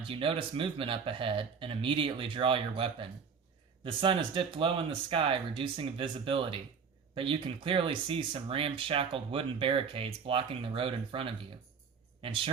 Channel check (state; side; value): quieter; left; 6.1 dB